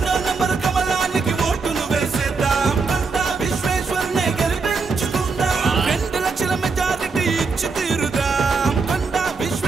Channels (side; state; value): left; quieter; 4.6 dB